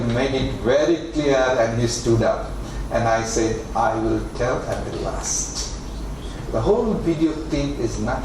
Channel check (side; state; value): both; identical; correlation 1.00